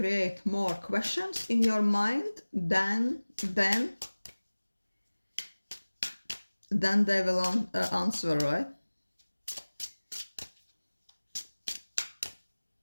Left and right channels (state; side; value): inverted; both; correlation -1.00